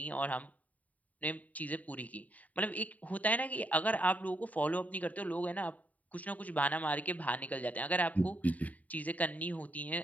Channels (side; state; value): right; late; 0.072 ms